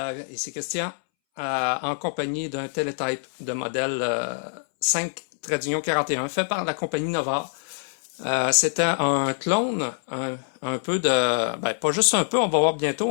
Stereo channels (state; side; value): silent; right; 62 dB below the other